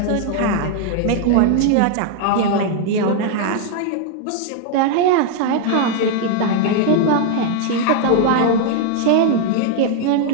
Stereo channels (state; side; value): different; both; correlation 0.00